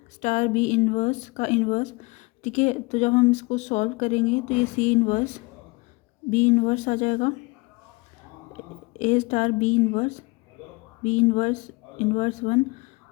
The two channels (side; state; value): right; quieter; 26.1 dB